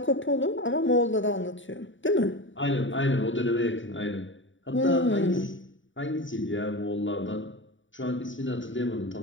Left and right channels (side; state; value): right; late; 0.56 ms